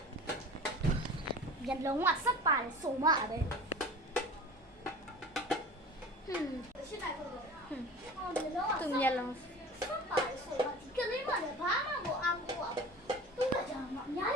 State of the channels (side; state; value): both; normal; correlation 0.38